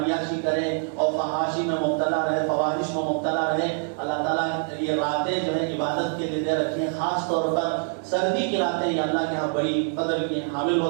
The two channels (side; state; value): left; silent; 58 dB below the other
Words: کریں اور فحاشی میں مبتلا رہے، فواحش میں مبتلا رہے. اللہ تعالیٰ یہ راتیں جو ہے عبادت کے لیے دے رکھی ہیں. خاص طور پر سردی کی راتیں یہ اللہ کے یہاں بڑی قدر کی حامل